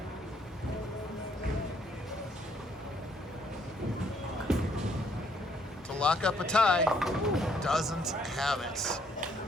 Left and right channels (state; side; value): normal; both; correlation 0.67